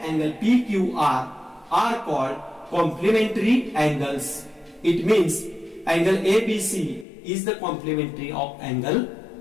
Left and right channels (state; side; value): drops out; right; at 7.1 s